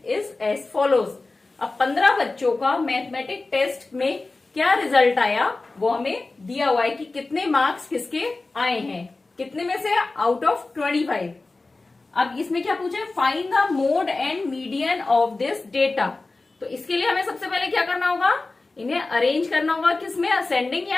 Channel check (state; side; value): quieter; right; 3.4 dB